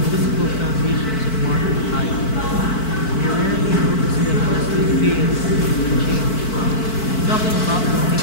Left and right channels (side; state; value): right; late; 4.5 ms